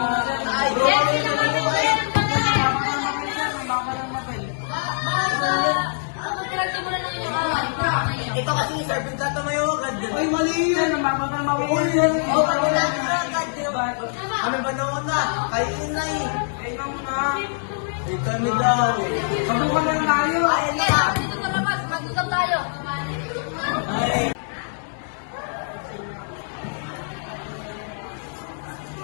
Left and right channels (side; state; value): right; silent; 63 dB below the other